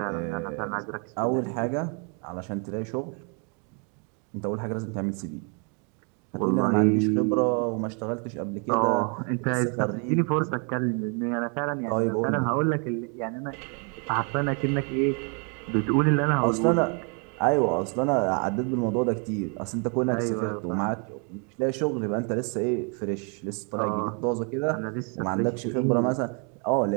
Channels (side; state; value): left; quieter; 37.6 dB